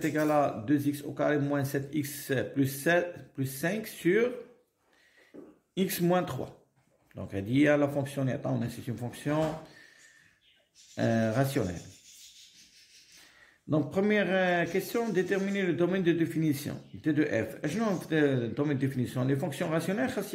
égal à 2x au carré moins 7x plus 5 sur x moins 3. Donc, elle dit à la fonction, c'est une fonction rationnelle. Donc, première question, déterminer le domaine de définition T de f. Le domaine de définition, les fonctions rationnelles,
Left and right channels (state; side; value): identical; both; correlation 1.00